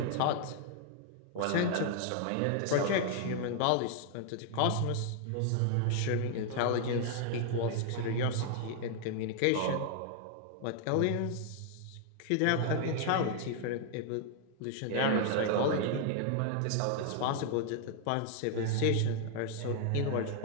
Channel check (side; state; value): both; different; correlation 0.00